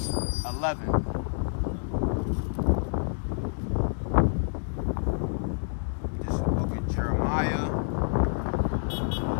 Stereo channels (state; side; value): silent; right; digital silence